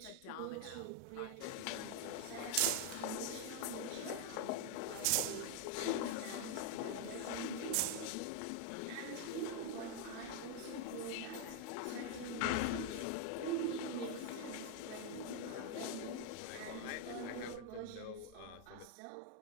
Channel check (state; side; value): different; both; correlation 0.00